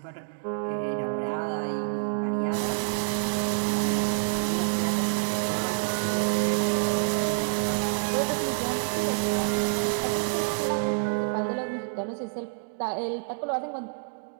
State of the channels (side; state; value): left; silent; 60 dB below the other